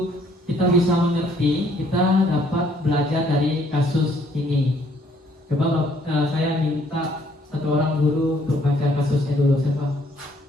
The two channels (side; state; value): both; normal; correlation 0.64